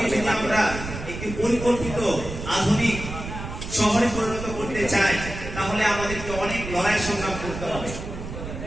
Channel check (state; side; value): noise; right; rumble, 8 dB below the sound